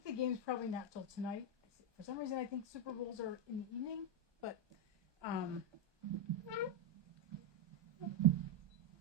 the game's probably not till tonight. For some reason, I think Super Bowls are in the evening, but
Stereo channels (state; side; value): late; left; 1.2 ms